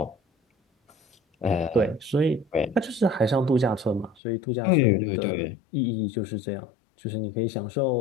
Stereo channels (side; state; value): right; drops out; at 4.2 s